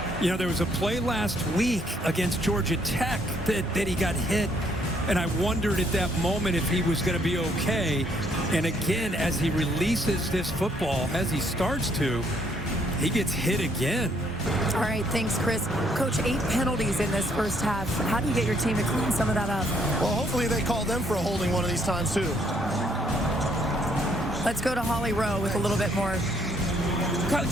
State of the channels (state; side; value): normal; both; correlation 0.68